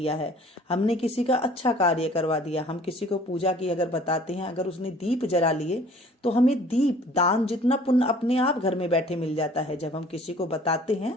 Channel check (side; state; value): both; normal; correlation 0.52